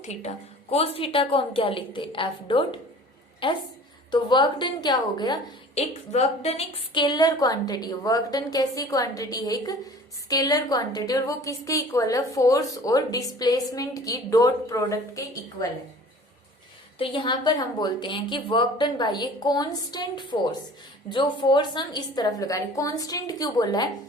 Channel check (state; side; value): normal; both; correlation 0.46